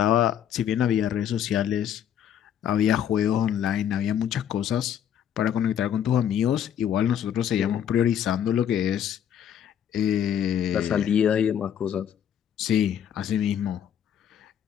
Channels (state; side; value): quieter; right; 9.5 dB